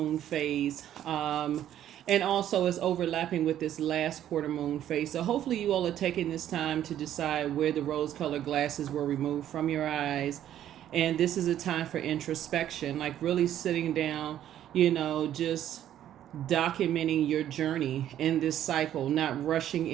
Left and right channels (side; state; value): left; quieter; 11.3 dB